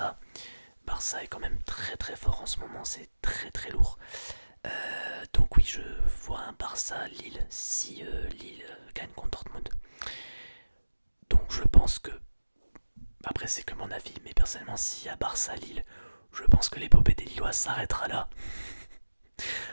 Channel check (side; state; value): both; inverted; correlation -1.00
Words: Barça est quand même très très fort en ce moment, c'est très très lourd. Donc oui, je vois un Barça-Lille si Lille gagne contre Dortmund. Donc je pense que, après c'est que mon avis, mais personnellement s'il y a Barça-Lille, je pense que l'épopée des Lillois s'arrêtera là.